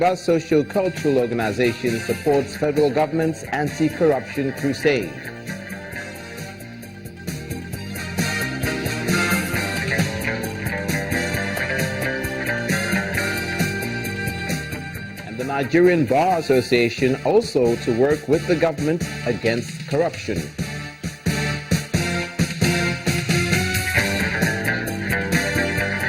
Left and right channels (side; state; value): both; identical; correlation 1.00